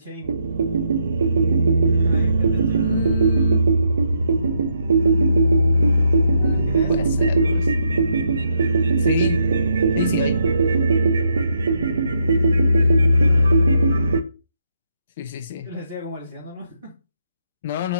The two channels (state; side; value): inverted; both; correlation -0.77